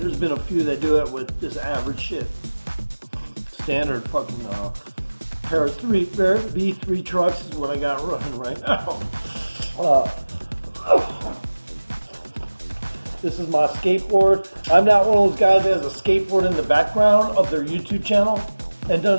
been a few that do it with this average shit. Standard fucking pair of B3 trucks is what I got running right now. This is my skateboard. I'm not one of those guys that has a skateboard in the background of their YouTube channel and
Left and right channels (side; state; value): both; inverted; correlation -1.00